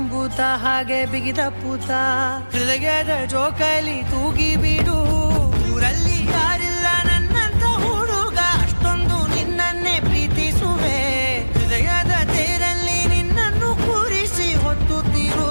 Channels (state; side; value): inverted; both; correlation -1.00